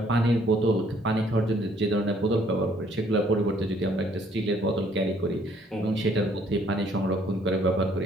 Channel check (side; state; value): both; normal; correlation 0.63